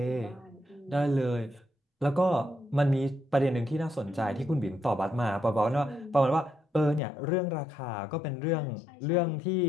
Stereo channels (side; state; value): right; drops out; at 7.0 s